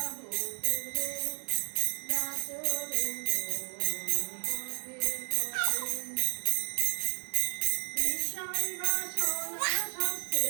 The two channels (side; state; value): left; silent; 56 dB below the other